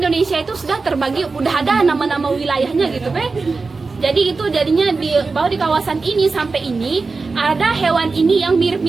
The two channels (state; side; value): quieter; left; 4.1 dB